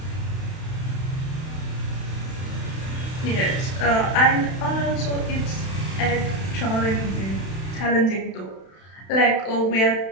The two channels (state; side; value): late; right; 31 ms